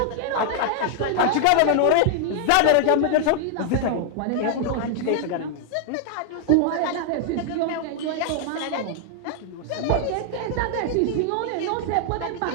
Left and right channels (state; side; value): different; both; correlation 0.00